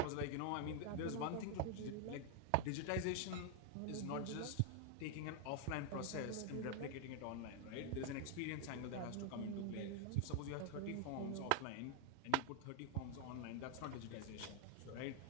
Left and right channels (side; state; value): both; different; correlation 0.00